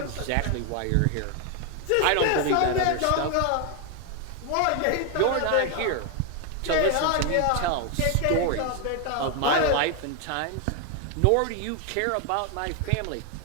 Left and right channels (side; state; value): both; different; correlation 0.01